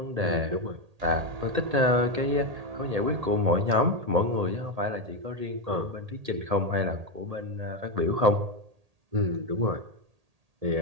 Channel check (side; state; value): left; late; 1.8 ms